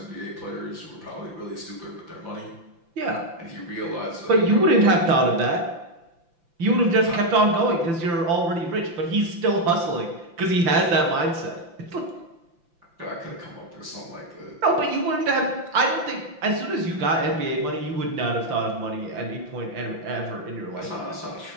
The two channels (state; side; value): late; left; 5.9 ms